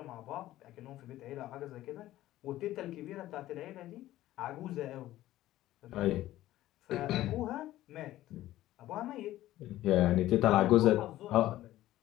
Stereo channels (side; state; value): right; quieter; 14.9 dB